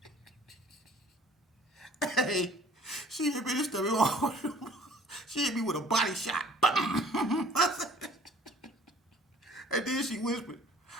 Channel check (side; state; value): both; normal; correlation 0.53